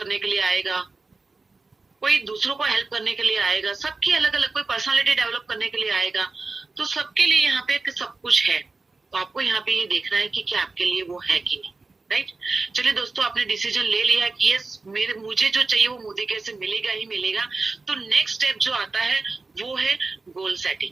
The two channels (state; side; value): quieter; left; 3.8 dB